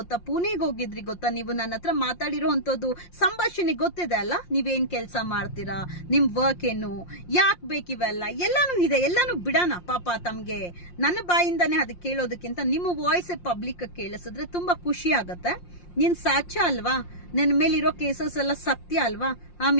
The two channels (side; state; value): right; late; 5.7 ms